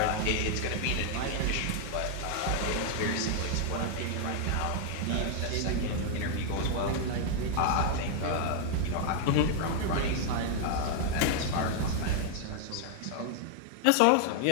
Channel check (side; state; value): both; different; correlation 0.00